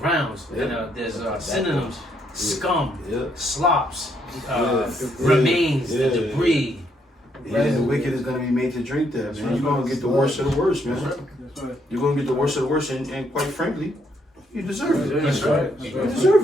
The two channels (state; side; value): normal; both; correlation 0.73